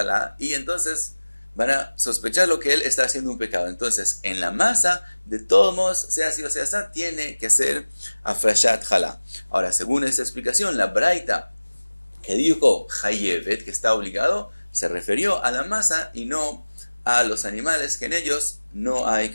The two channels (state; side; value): inverted; both; correlation -1.00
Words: y entonces van a sospechar lo que él está haciendo un pecado. Entonces, en la masa, de todos modos, sea así o sea así, tiene que ser afrashat jalá. Ahora, según esta explicación, la braita que dijo Chayevet, que está obligado, se refirió a la masa y no a los animales, que en ellos no hay